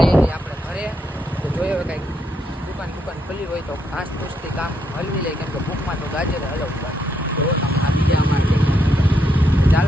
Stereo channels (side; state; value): both; normal; correlation 0.78